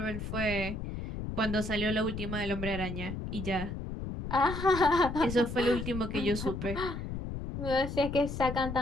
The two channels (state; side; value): noise; left; rumble, 6 dB below the sound